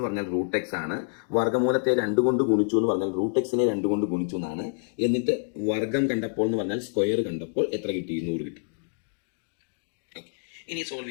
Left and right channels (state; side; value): silent; right; digital silence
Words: പറഞ്ഞാൽ റൂട്ട് എക്സ് ആണ്. വർഗമൂലത്തെ 2 കൊണ്ട് ഗുണിച്ചു എന്ന് പറഞ്ഞാൽ റൂട്ട് എക്സിനെ 2 കൊണ്ട് ഗുണിച്ചു എന്നാണ്. എന്നിട്ട് വർഗം കണ്ടപ്പോൾ എന്ന് പറഞ്ഞാൽ സ്ക്വയർ കണ്ടപ്പോൾ എത്ര കിട്ടി? 100 കിട്ടി. ഇനി സോൾവ്